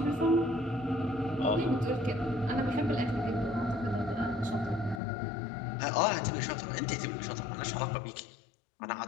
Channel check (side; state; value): right; drops out; at 5.0 s